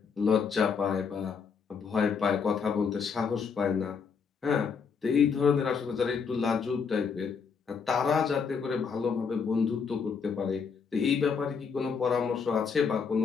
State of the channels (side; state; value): right; quieter; 5.9 dB